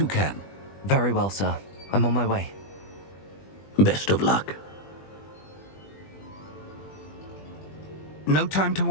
can. Very well, sir. I'm on my way. Best of luck. No time to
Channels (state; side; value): late; right; 20 ms